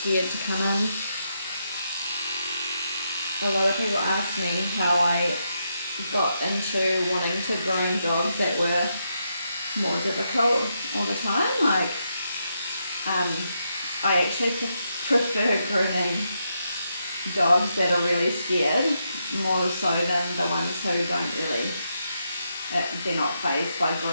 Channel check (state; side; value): inverted; both; correlation -0.82